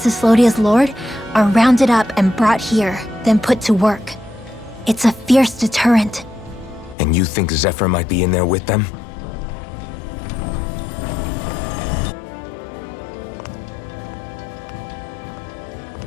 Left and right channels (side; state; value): right; drops out; at 7.0 s